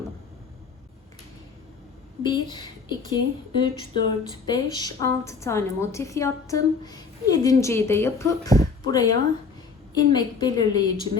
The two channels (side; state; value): right; quieter; 5.0 dB